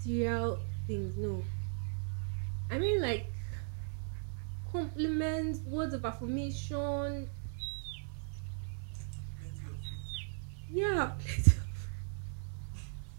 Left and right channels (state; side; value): silent; left; 53 dB below the other